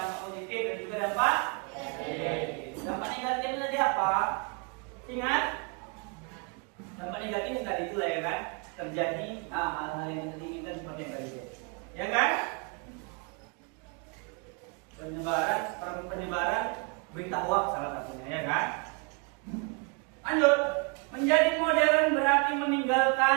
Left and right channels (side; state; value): left; quieter; 33.7 dB